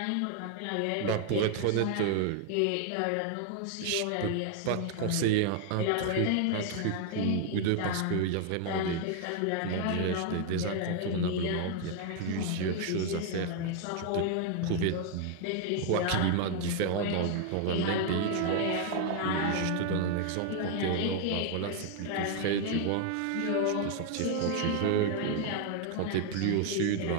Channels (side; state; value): both; different; correlation 0.00